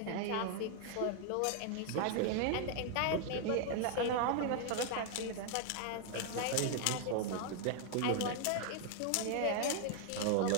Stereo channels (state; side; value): different; both; correlation 0.00